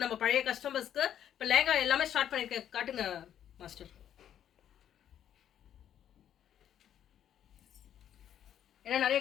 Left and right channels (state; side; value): quieter; right; 10.1 dB